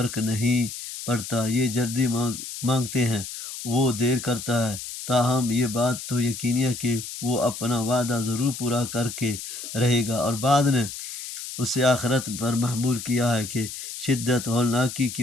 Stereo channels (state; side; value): noise; left; hiss, 9 dB below the sound